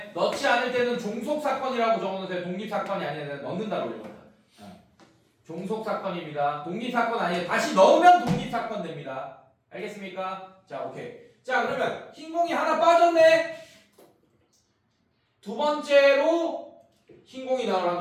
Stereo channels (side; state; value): both; identical; correlation 1.00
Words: 넣지 않을 때는 종속사건이라고 적어놓으세요. 독립사건이 아니라 넣는다고 읽었다. 종속사건입니다. 독립사건 아니에요. 다시 넣으면 독립사건 됩니다. 알겠습니까? 자, 오케이. 자, 그러면 흰 공이 하나 빠졌네. 두 번째로 흰 공이 나올